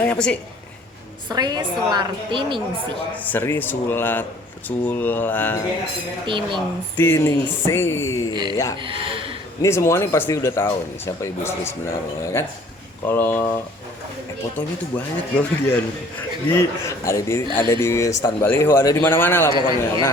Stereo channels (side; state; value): both; normal; correlation 0.54